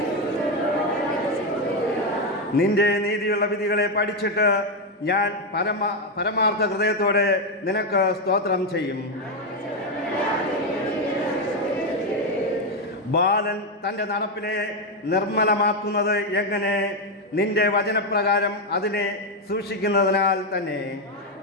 നിന്റെ നീതിയുള്ള വിധികളെ പഠിച്ചിട്ട് ഞാൻ പരമാർത്ഥ ഹൃദയത്തോടെ നിനക്ക് സ്തോത്രം ചെയ്യും. ബാലൻ തൻ്റെ നടപ്പിനെ നിർമ്മലമാക്കുന്നത് എങ്ങനെ? നിന്റെ വചനപ്രകാരം അതിനെ സൂക്ഷിക്കുന്നതിനാൽ തന്നെ.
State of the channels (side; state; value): both; normal; correlation 0.07